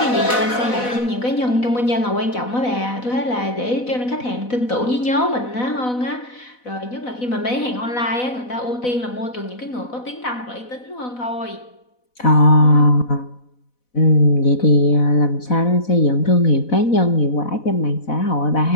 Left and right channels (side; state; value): right; late; 4.1 ms